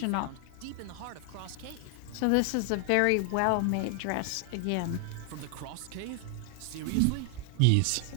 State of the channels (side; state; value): both; different; correlation 0.00